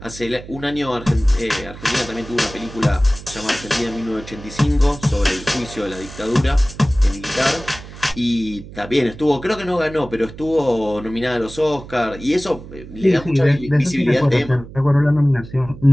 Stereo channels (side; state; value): right; noise; hum, 15 dB below the sound